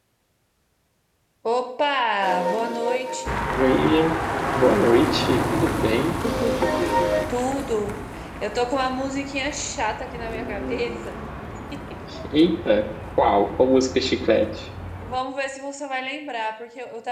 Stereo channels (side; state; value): both; identical; correlation 1.00